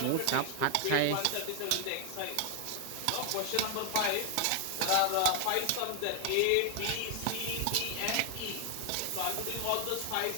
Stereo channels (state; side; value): different; both; correlation 0.00